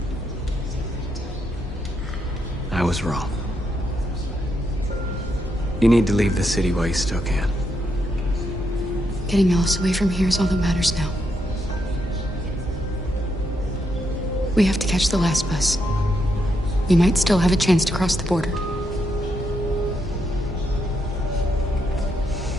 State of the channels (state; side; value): normal; both; correlation 0.80